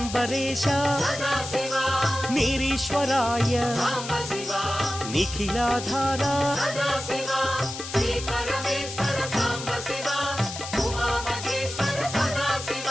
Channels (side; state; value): left; noise; hiss, 9 dB below the sound